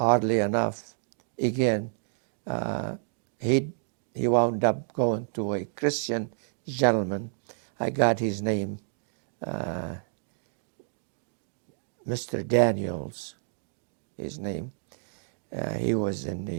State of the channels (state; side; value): silent; left; digital silence